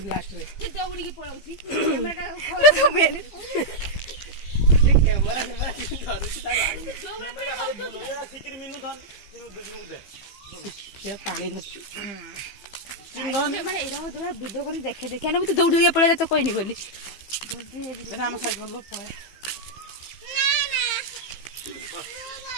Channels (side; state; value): right; late; 15 ms